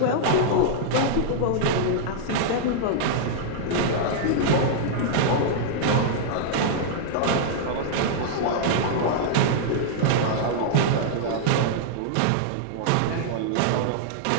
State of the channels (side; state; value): both; different; correlation -0.02